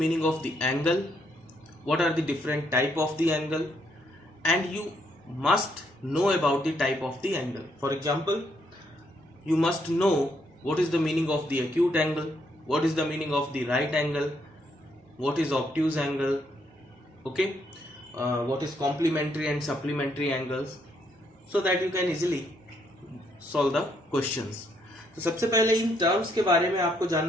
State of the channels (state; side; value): normal; both; correlation 0.73